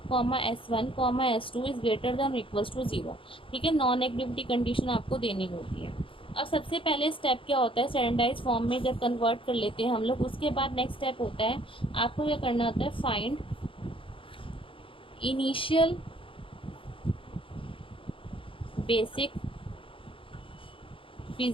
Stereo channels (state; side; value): late; right; 0.25 ms